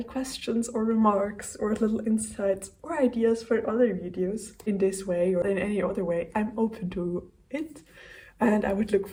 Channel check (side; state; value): both; identical; correlation 1.00